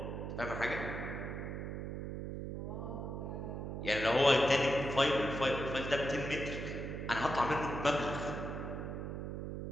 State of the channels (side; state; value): right; noise; hum, 5 dB below the sound